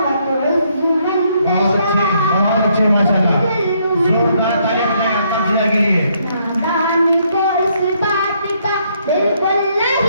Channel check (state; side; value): inverted; both; correlation -0.71